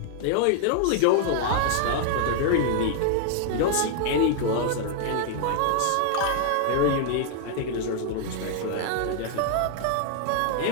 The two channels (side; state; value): both; different; correlation 0.00